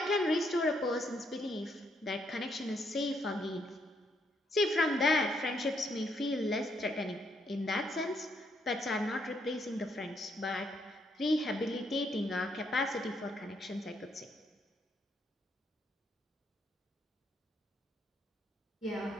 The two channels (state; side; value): normal; both; correlation 0.74